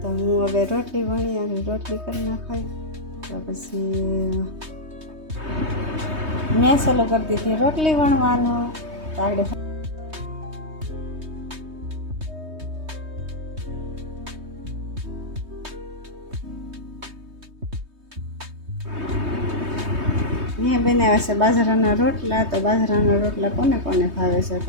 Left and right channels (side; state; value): left; late; 3.2 ms